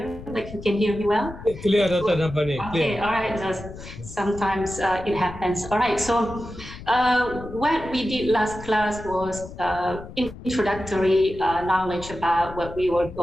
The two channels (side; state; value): left; noise; rumble, 14 dB below the sound